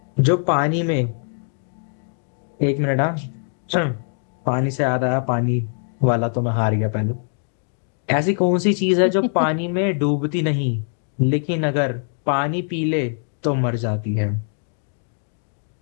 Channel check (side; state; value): right; silent; digital silence